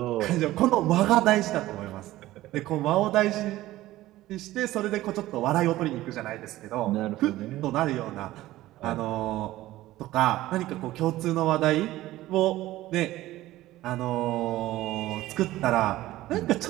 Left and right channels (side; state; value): left; quieter; 16.1 dB